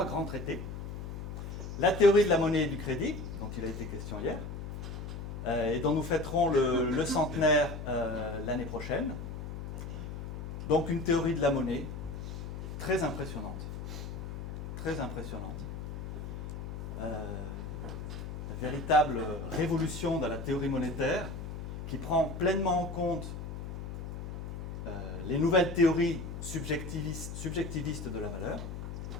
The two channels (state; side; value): noise; left; hum, 7 dB below the sound